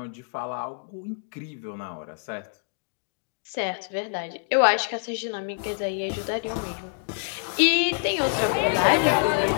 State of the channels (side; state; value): right; silent; digital silence